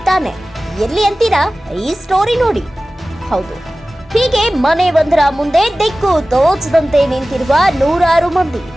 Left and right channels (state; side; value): normal; both; correlation 0.96